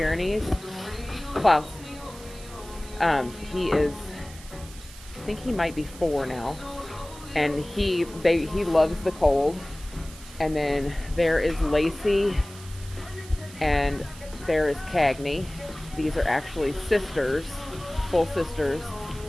Klaus. He is, I think he might be 4 now, and he loves the cold. And then there is Lacey, and there is Cagney. These are actually sisters, full sisters,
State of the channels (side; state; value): right; noise; hiss, 18 dB below the sound